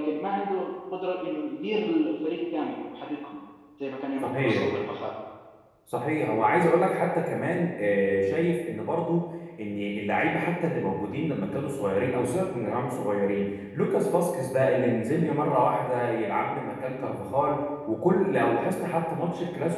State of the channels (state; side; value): identical; both; correlation 1.00